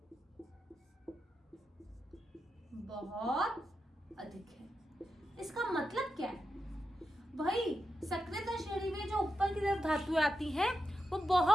बहुत अधिक है। इसका मतलब क्या है भाई, सक्रियता श्रेणी में जो ऊपर की तरफ धातुएं आती हैं वो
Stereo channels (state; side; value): normal; both; correlation 0.88